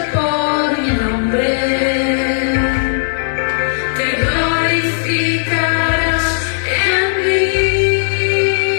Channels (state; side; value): silent; right; digital silence